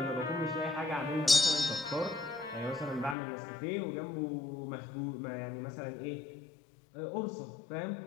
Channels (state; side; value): drops out; right; at 3.2 s